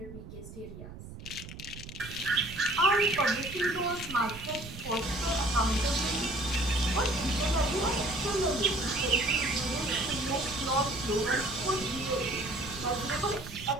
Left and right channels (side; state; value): right; noise; rumble, 13 dB below the sound